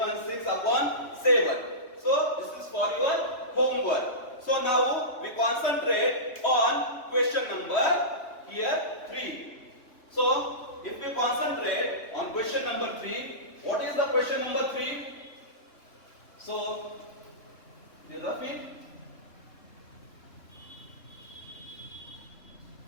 6 upon 7. So this is for your homework. So now we concentrate on question number here 3. So if we concentrate on question number 3, what is the question number 3? So Rafi,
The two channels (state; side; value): late; right; 3.2 ms